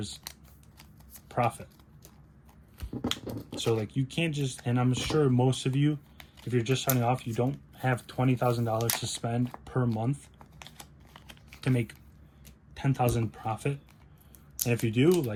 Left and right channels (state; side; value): identical; both; correlation 1.00